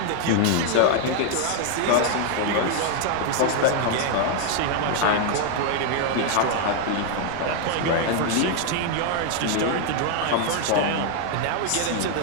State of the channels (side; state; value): both; different; correlation 0.00